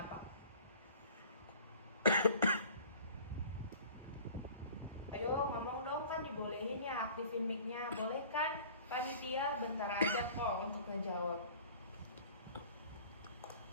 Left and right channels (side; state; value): both; inverted; correlation -0.47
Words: Ayo ngomong dong, kan dibolehin ya, aktifin mic-nya. Boleh kan? Panitia bentar aja kok untuk ngejawab.